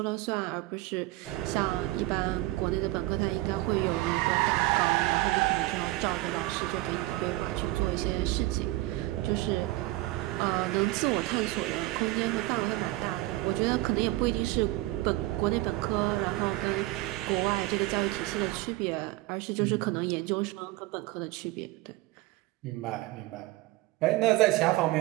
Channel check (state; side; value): quieter; left; 18.7 dB